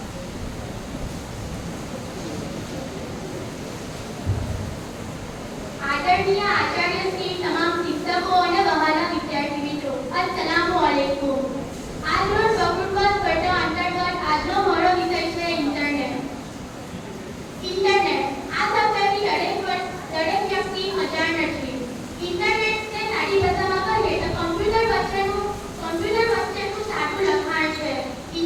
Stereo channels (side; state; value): both; identical; correlation 1.00